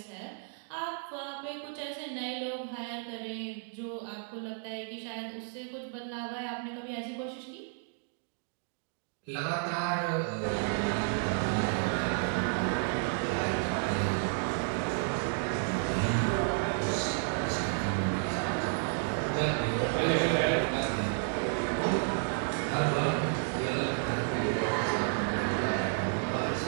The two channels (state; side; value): silent; left; 57 dB below the other